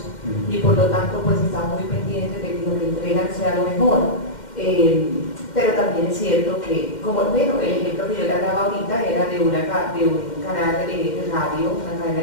y por lo tanto pues están muy pendientes de que lo que entregan sea lo mejor. Pero también es cierto que, como bueno, el ejemplo que yo le hablaba ahorita era de un canal de radio, una cadena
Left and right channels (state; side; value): late; right; 2.1 ms